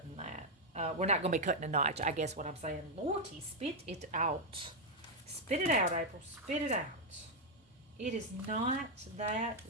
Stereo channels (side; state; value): both; normal; correlation 0.01